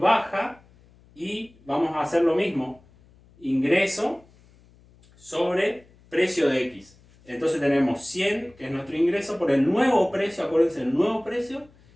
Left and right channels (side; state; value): left; noise; hum, 28 dB below the sound